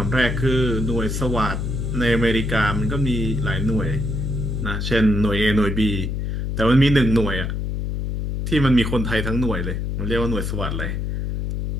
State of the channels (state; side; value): noise; left; hum, 2 dB below the sound